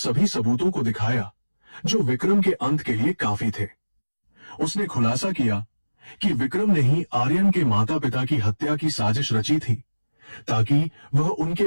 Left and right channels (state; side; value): inverted; both; correlation -1.00